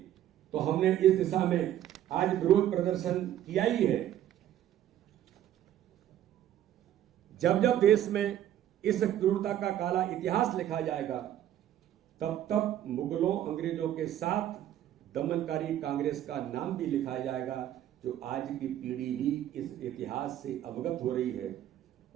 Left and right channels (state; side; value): quieter; left; 11.8 dB